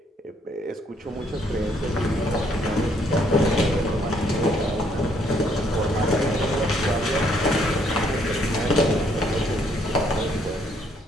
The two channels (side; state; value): both; normal; correlation 0.68